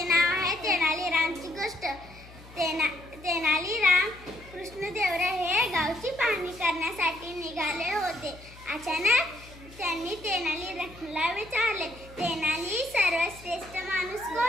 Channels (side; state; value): left; noise; hum, 20 dB below the sound